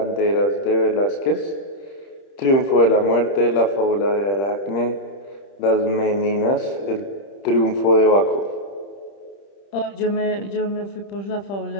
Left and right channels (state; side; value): late; right; 30 ms